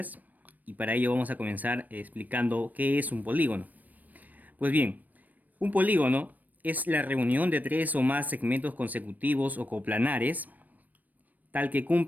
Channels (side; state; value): left; late; 0.083 ms